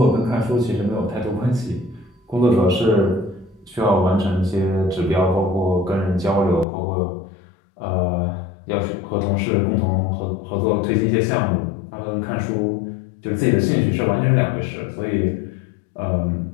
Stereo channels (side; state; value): right; drops out; at 6.7 s